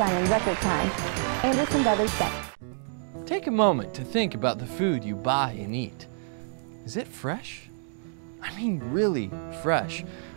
in record time. Anderson Brothers Bank. Take a moment to think about the food you buy and eat. Is it fresh? I mean really fresh.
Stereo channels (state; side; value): silent; left; digital silence